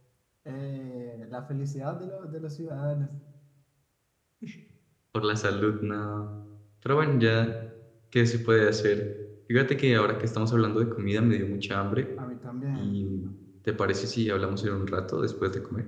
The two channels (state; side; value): identical; both; correlation 1.00